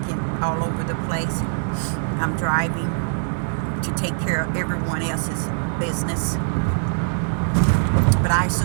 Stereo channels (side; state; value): left; silent; 64 dB below the other